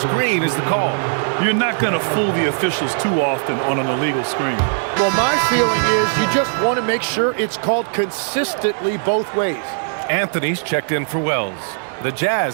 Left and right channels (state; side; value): silent; left; digital silence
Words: is the call. You're not going to fool the officials too often on an illegal screen. Well, my feeling is you just want to make sure it's called consistently both ways. Anthony's checked in for Wells. The